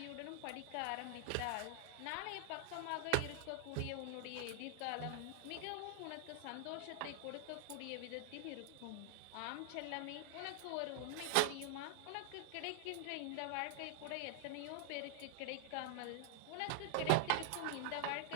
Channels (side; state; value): both; different; correlation 0.00